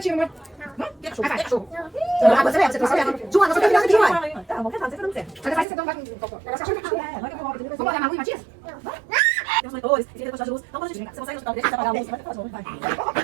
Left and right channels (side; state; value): left; drops out; at 5.7 s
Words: Que cachorro? Que cachorro? Você trouxe. Joana, você tá virando aqui, uai. Tá, vamos tentar, você tá dando certo. Você vai com vai com vamos olhar na rua, Matias? Tem uns monitores, tem que de luz. Então, quando a gente você consegue ajudar, deixa eu apagar a luz, vai falar vai.